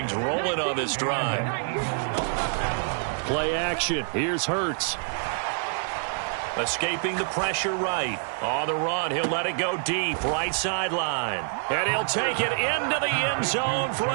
rolling on this drive. Play action. Here's Hurts. Escaping the pressure right. On the run, he'll let it go deep, right sideline. And he'll take it into the end zone for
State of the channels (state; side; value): silent; left; digital silence